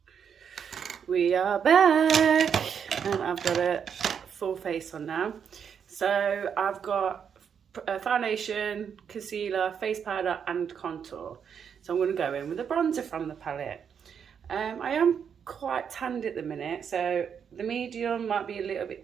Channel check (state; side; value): quieter; left; 7.4 dB